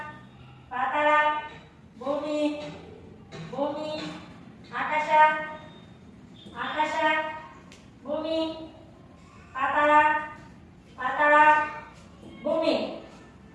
ಪಾತಾಳ, ಭೂಮಿ, ಭೂಮಿ, ಆಕಾಶ, ಆಕಾಶ, ಭೂಮಿ, ಪಾತಾಳ, ಪಾತಾಳ, ಭೂಮಿ,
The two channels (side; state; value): both; identical; correlation 1.00